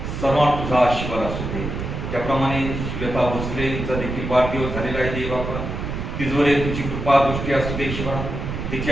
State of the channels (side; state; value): right; noise; rumble, 5 dB below the sound